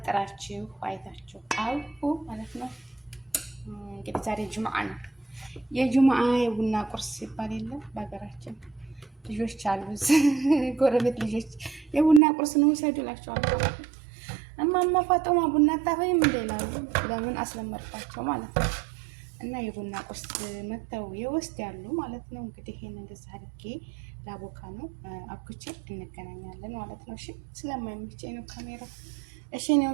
አይታችሁ አውቁ ማለት ነው። እንግዲህ ዛሬ ጁምዓ ነው። የጁምዓ የቡና ቁርስ ሲባል የለም በሀገራችን ልጆች አሉ፣ ጎረቤት ልጆች የቡና ቁርስ ነው ውሰዱ እላቸዋለሁ። እማማ ፋጦማ ቡና አታፈይም እንደ ይላሉ። ለምን አስለመድኳቸው ማለት ነው። እና የቡና ቁርስ መተው የውስጥ ያሉ ማለት ነው። እንግዲህ ይሄን እንደዛ አድርጌ ላቦካ ነው አብኩቼ እንገናኛለን ማለት ነው። እሺ ስለማይመቸኝ ነው ካሜራ። እሺ እኔ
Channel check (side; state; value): left; drops out; at 12.2 s